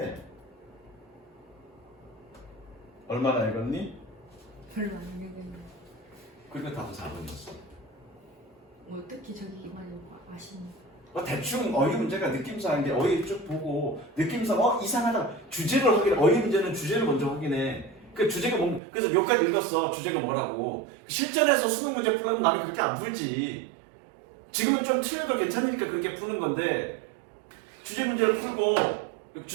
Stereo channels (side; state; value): left; drops out; at 18.8 s